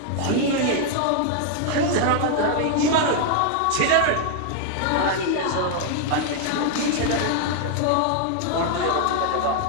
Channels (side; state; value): both; different; correlation 0.00